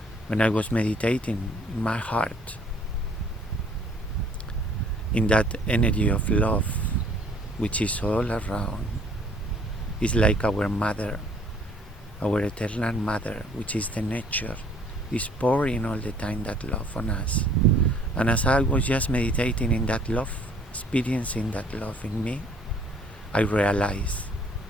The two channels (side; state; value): both; normal; correlation 0.58